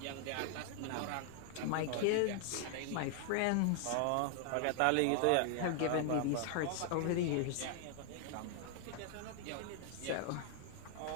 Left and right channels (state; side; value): different; both; correlation 0.00